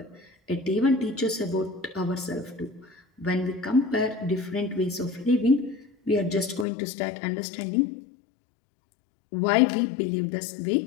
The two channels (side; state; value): right; drops out; at 6.7 s